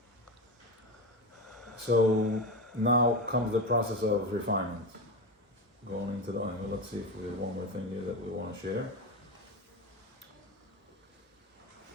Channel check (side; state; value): both; normal; correlation 0.20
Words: So now comes the process of refinement. Going into the oil. Let's see if there's one more thing here that we want to share.